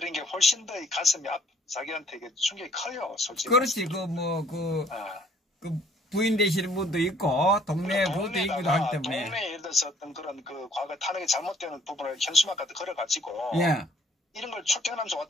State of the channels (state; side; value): normal; both; correlation 0.60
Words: 게 훨씬 더 가슴이 자기한테 충격이 커요, 솔직히. 그렇지. 부인 되시는 분도 있고 동네 부도 있기도 하기 때문에 동네에 예를 들어서 어떤 그런 과거 탄핵이 잘못되는 부분을 현수막까지 걸어가지고 이런 걸 출퇴근하면서